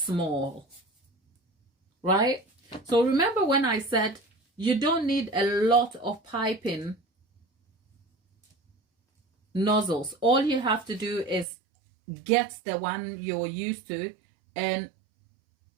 Right? So remember when I said you don't need a lot of piping nozzles. All you have to do is get the one you're used to and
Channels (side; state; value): left; drops out; at 11.5 s